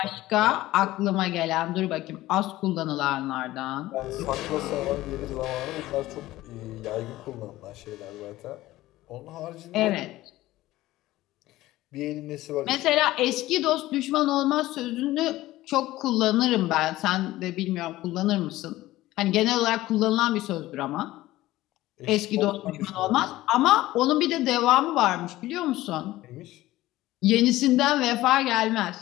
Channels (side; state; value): right; quieter; 16.6 dB